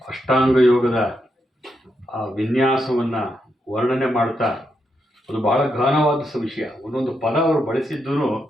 ಅಷ್ಟಾಂಗ ಯೋಗದ ಆ ವಿನ್ಯಾಸವನ್ನು ವರ್ಣನೆ ಮಾಡ್ತಾ ಅದು ಬಹಳ ಘನವಾದ ವಿಷಯ. ಒಂದೊಂದು ಪದ ಅವರು ಬಳಸಿದ್ದು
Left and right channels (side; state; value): both; normal; correlation 0.82